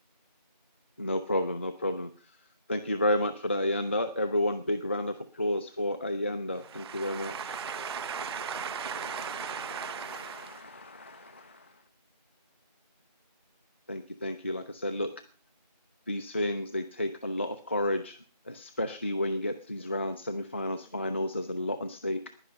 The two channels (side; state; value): both; inverted; correlation -0.67